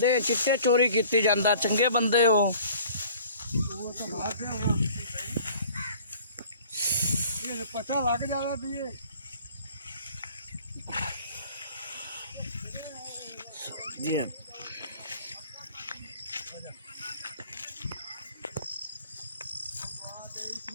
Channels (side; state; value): both; inverted; correlation -0.50